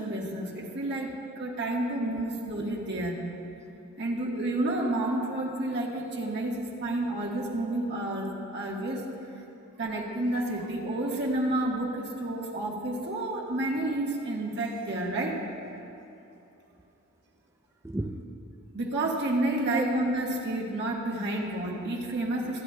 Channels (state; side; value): normal; both; correlation 0.49